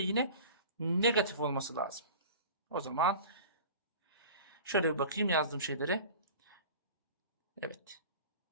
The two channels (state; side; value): inverted; both; correlation -0.38